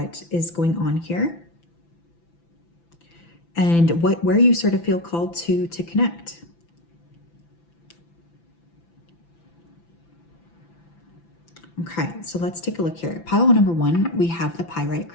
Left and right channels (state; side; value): late; right; 5.9 ms